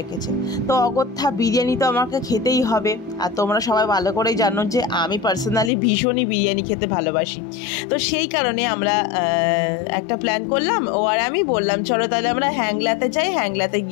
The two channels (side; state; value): right; drops out; at 5.7 s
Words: তো অগত্যা বিরিয়ানি তো আমাকে খেতেই হবে। আর তোমরা সবাই ভালো করেই জানো যে আমি পার্সোনালি ভীষণই বিরিয়ানি খেতে ভালোবাসি। তো সেই কারণে আমরা একটা প্ল্যান করলাম, ও আর আমি বললাম চলো তাহলে আমরা হ্যাংলাতে যাই, হ্যাংলাতে